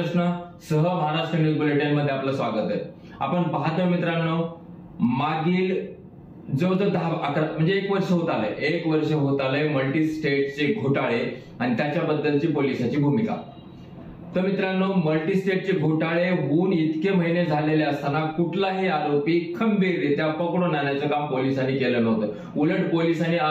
सह महाराष्ट्र न्यूज बुलेटिन मध्ये आपलं स्वागत आहे। आपण पाहतोय मित्रांनो, मागील जवळजवळ 10-11 म्हणजे 1 वर्ष होत आलंय मल्टी स्टेटचे घोटाळे आणि त्याच्याबद्दलची पोलिसांची भूमिका। तर मित्रांनो, मल्टी स्टेटचे घोटाळे होऊन इतके महिने झालेले असताना कुठलाही आरोपी खंबीररित्या पकडून आणण्याचं काम पोलिसांनी केलं नव्हतं। उलट पोलिसांनी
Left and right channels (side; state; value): both; identical; correlation 1.00